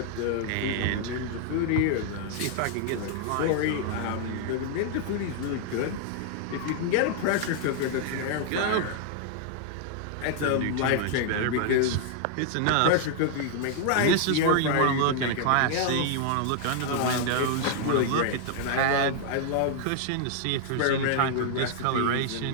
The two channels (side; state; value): both; different; correlation -0.01